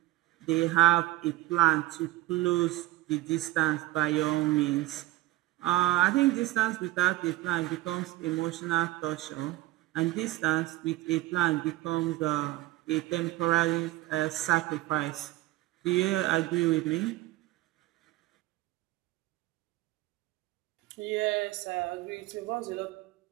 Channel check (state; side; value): quieter; left; 17.3 dB